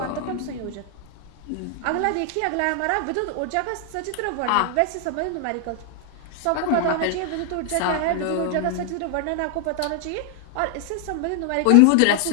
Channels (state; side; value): different; both; correlation 0.00